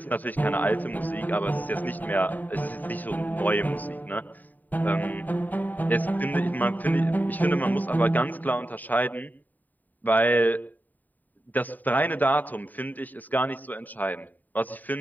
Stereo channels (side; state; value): right; late; 0.086 ms